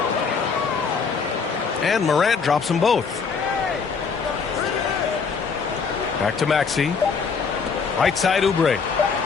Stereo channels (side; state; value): right; quieter; 5.5 dB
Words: And Morant drops them both. Back to Maxey. Right side Oubre.